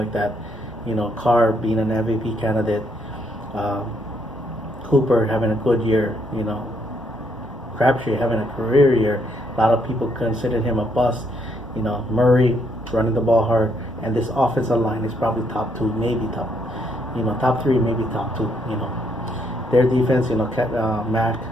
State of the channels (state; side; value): normal; both; correlation 0.73